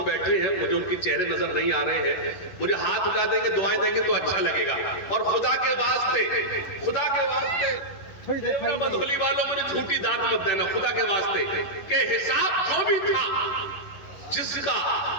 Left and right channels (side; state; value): right; late; 11 ms